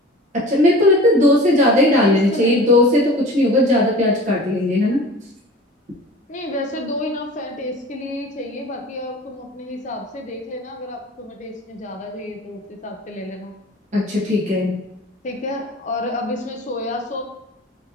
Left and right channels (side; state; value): both; normal; correlation 0.41